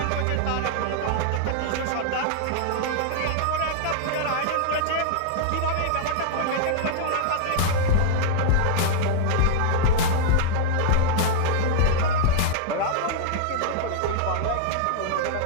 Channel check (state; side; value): different; both; correlation -0.01